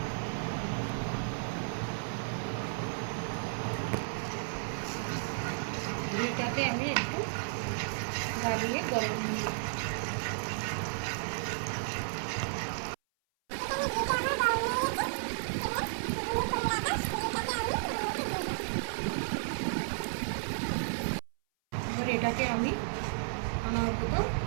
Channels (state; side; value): silent; left; 56 dB below the other